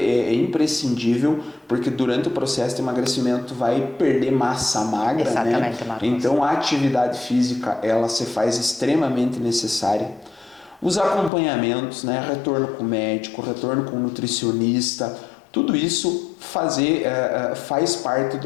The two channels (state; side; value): drops out; right; at 11.3 s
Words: imprescindível, porque durante o processo de emagrecimento tu vai perder massa magra, exatamente, né? Marcos. Então a atividade física ela se faz extremamente necessária. Os acompanhamentos, né? Retorno com o médico, retorno com o nutricionista, tudo isso faz parte